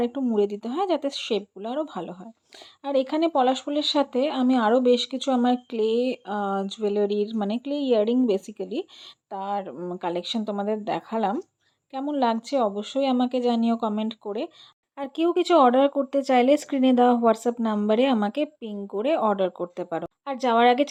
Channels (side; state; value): both; identical; correlation 1.00